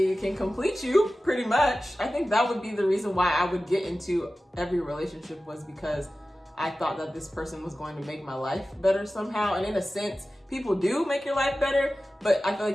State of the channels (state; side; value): normal; both; correlation 0.95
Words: can complete you, pretty much. I think that would be the reason why I would get into every relationship, was because I thought that this person was going to make my life better somehow. And in a sense, people do make your life better, but I feel